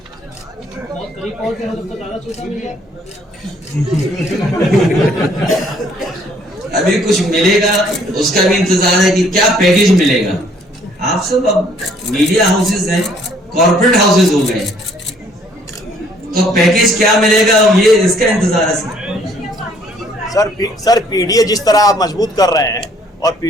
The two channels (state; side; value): normal; both; correlation 0.62